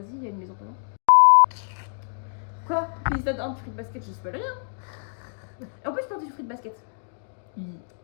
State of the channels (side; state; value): right; silent; digital silence